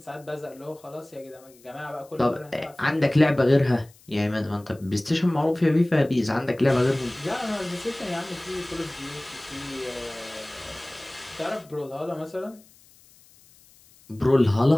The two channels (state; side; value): noise; left; hiss, 27 dB below the sound